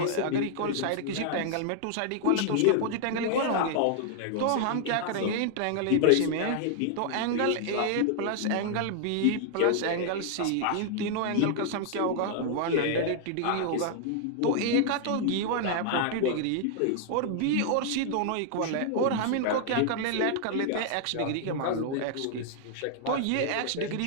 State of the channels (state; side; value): different; both; correlation -0.01